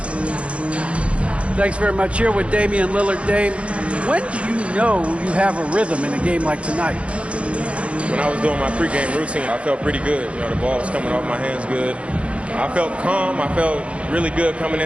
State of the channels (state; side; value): late; left; 0.061 ms